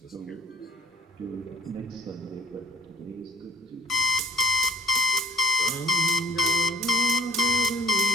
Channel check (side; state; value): both; normal; correlation 0.52